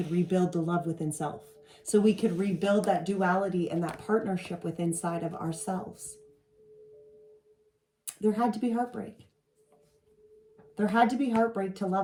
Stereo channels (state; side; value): identical; both; correlation 1.00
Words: rebuild the love within self. So we could rebuild that duality and that partnership within inside of ourselves. There had to be heartbreak. There had to be heartbreak to